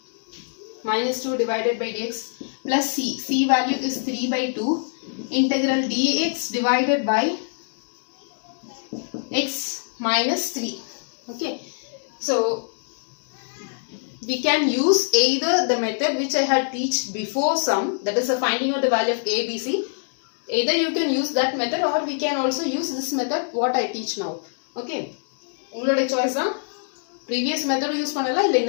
Minus 2 divided by dx plus c. C value is 3 by 2. Integral dx divided by x minus 3. Okay. So we can use either the method which I had teach before some, that is the finding out the value of a, b, c. Either you can use that method or we can also use this method what I teach now. Okay. உங்களுடைய choice தான். Previous method use பண்ணலாம் இல்ல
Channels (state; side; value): silent; right; digital silence